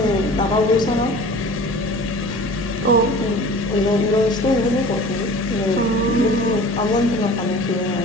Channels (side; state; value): both; normal; correlation 0.42